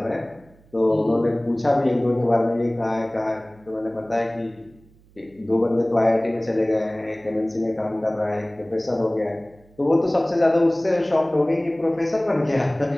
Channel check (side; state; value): right; noise; hum, 29 dB below the sound